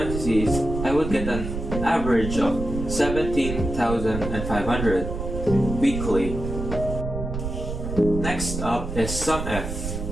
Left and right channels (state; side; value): noise; right; rumble, 5 dB below the sound